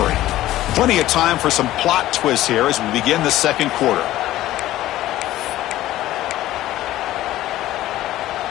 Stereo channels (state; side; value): quieter; right; 14.9 dB